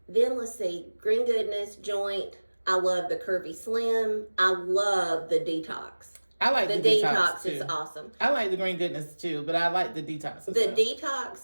Then let's see, Green Goodness, Joint. I love the Curvy Slim. I love the Detox. I like the detox too. Is awesome. I like the Green Goodness too, but I like the detox as well.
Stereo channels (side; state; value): both; inverted; correlation -1.00